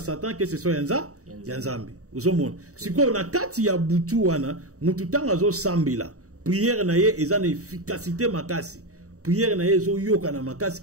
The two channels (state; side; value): late; left; 0.65 ms